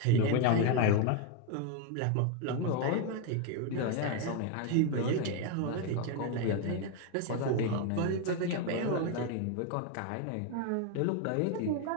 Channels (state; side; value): different; both; correlation 0.01